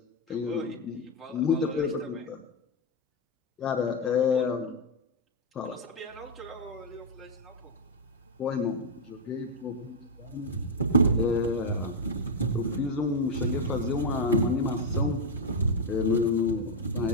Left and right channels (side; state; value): both; normal; correlation 0.00